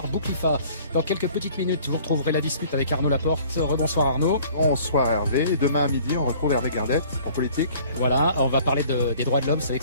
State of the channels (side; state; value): both; inverted; correlation -0.52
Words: Bouklifa. Dans quelques petites minutes, vous retrouverez la dispute avec Arnaud Laporte. Rebonsoir Arnaud. Bonsoir Hervé. Et demain à midi, on retrouve Hervé Gardette pour Politique. Voilà, on va parler des droits de l'homme. Vous savez